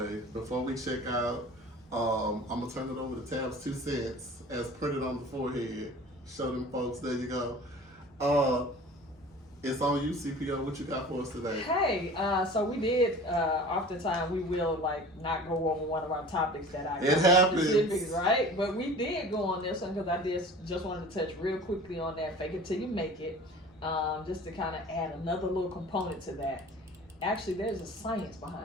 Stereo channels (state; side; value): normal; both; correlation 0.42